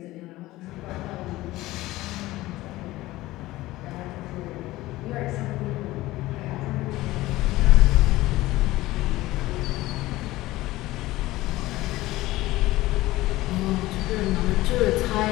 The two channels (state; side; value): quieter; right; 17.7 dB